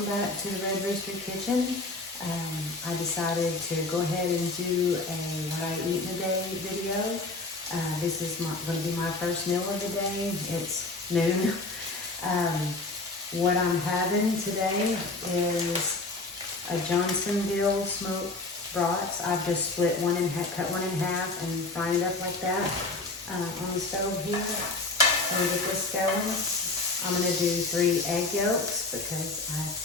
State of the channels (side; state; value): right; quieter; 3.2 dB